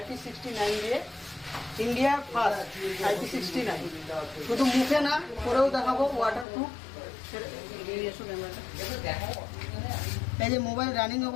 দিয়ে India first IP69 শুধু মুখে না পরেও দেখাবো ওয়াটারপ্রুফ। এই যে মোবাইল রানিং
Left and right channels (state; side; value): drops out; right; at 6.5 s